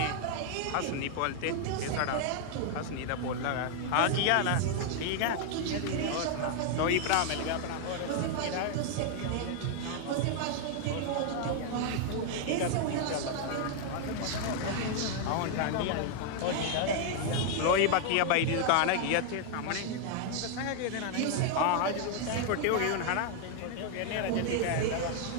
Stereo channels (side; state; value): both; different; correlation 0.00